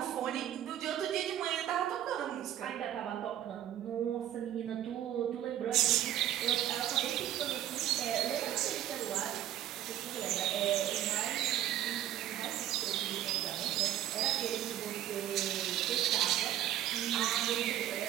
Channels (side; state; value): left; quieter; 12.1 dB